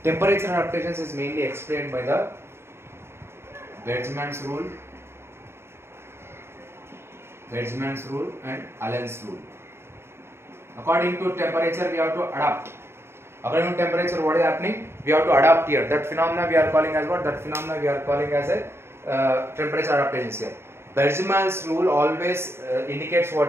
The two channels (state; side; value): late; left; 0.12 ms